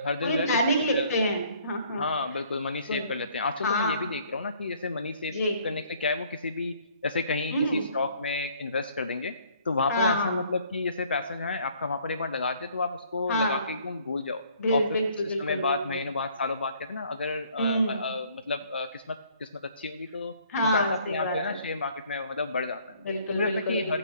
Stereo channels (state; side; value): inverted; both; correlation -0.60